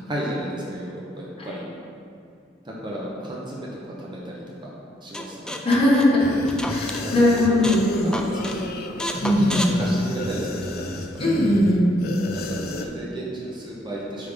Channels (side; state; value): both; normal; correlation 0.72